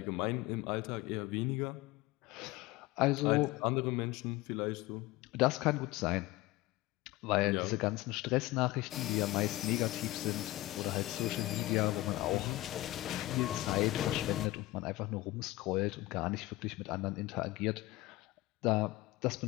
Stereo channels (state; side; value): quieter; right; 18.5 dB